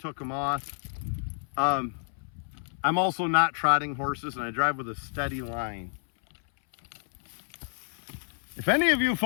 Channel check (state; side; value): silent; right; 58 dB below the other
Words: them off. I'm also not trotting horses, and I drive with a steady line. If any of you